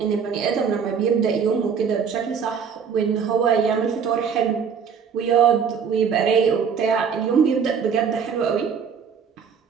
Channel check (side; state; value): left; quieter; 6.7 dB